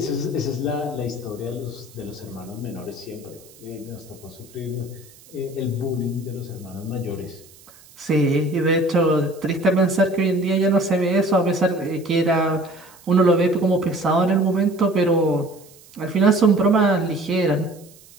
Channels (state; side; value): noise; right; hiss, 24 dB below the sound